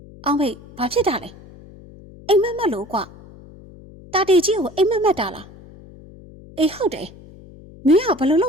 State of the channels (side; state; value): left; noise; hum, 21 dB below the sound